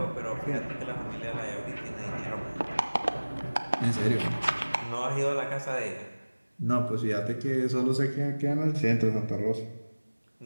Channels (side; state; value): both; inverted; correlation -1.00